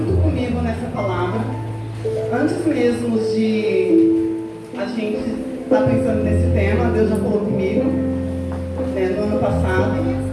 comigo nessa palavra, antes mesmo de a gente estar pensando nesse tema. Deus já falou comigo, no ano passado,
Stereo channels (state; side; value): identical; both; correlation 1.00